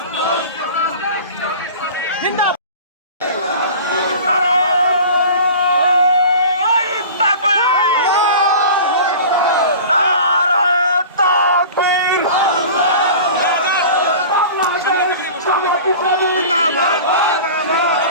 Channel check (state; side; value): inverted; both; correlation -0.38